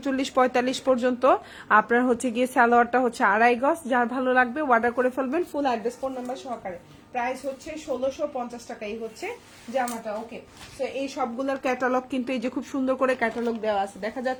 পর্যন্ত। আপনার হচ্ছে গিয়ে সালোয়ারটা হচ্ছে 2.5 গজ। যার ভালো লাগবে অর্ডার করে ফেলবেন, ফুল অ্যাড্রেস ফোন নাম্বার সহকারে। প্রাইস হচ্ছে 1650 টাকা, এই হচ্ছে জামাটা। ওকে, তো এই সবগুলোর ক্যাটালগ কিন্তু এই যে খুব সুন্দর করে ক্যাটালগ দেওয়া আছে, দেখা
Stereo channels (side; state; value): both; identical; correlation 1.00